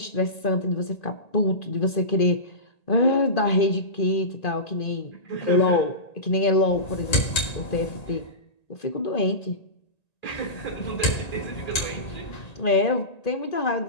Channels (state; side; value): late; right; 1.8 ms